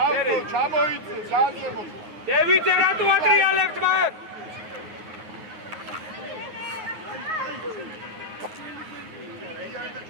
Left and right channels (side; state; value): left; late; 9.4 ms